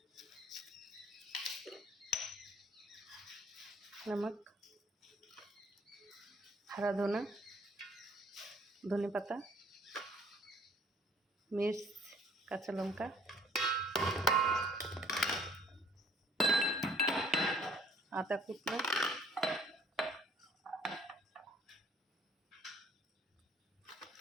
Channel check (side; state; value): both; normal; correlation 0.58